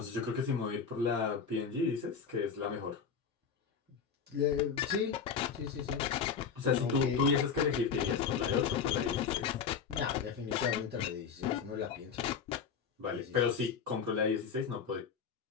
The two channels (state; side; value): quieter; right; 6.4 dB